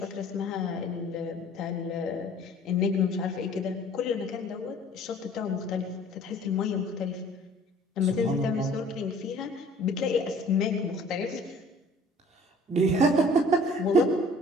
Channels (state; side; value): normal; both; correlation 0.51